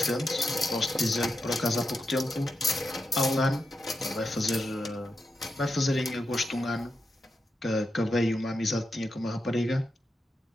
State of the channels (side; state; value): both; normal; correlation 0.87